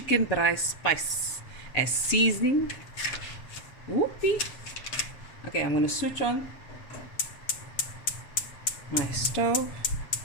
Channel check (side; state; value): right; late; 7.7 ms